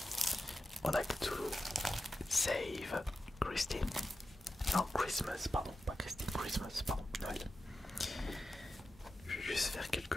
On a Cthulhu Save Christine. Non, Christmas, pardon, pas Christine, Christmas, pardon, Noël. Je vais juste faire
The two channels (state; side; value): normal; both; correlation 0.91